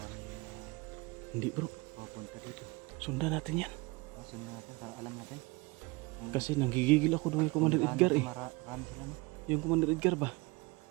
Hindi, bro. Papunta dito. Sundan natin yan. Sundan natin para alam natin. Kasi nanggigigil ako doon kay Commander Edgar eh. Marami sila, no? Yung Commander Edgar ba?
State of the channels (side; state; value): left; quieter; 25.3 dB